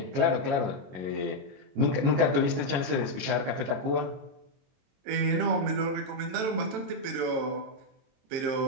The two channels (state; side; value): late; left; 22 ms